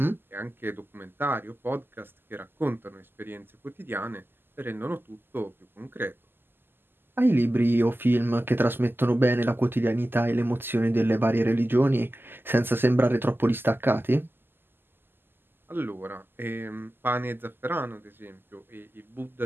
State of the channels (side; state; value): left; late; 0.098 ms